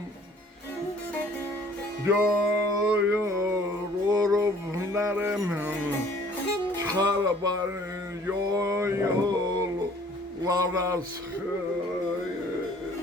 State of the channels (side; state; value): both; normal; correlation 0.55